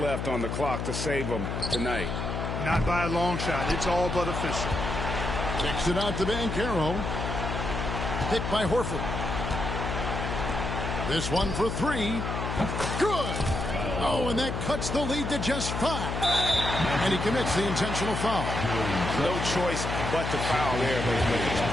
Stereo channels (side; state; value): left; noise; hum, 3 dB below the sound